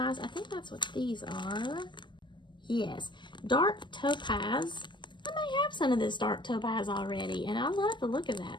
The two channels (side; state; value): right; late; 0.22 ms